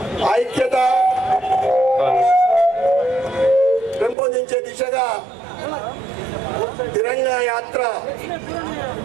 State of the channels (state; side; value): drops out; left; at 4.2 s